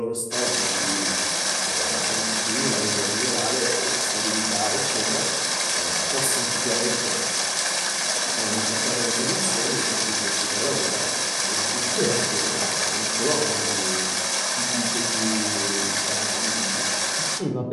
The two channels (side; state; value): both; identical; correlation 1.00